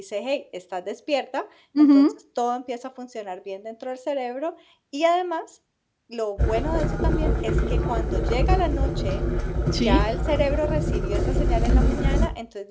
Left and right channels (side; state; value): both; identical; correlation 1.00